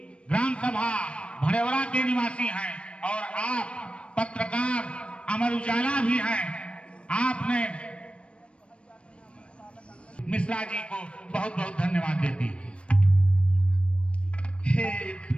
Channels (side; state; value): right; late; 0.059 ms